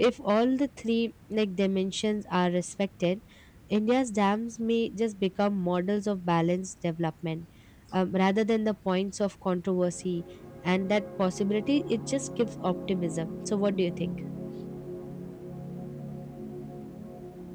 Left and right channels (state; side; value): identical; both; correlation 1.00